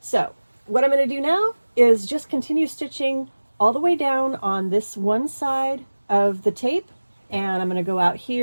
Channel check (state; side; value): inverted; both; correlation -1.00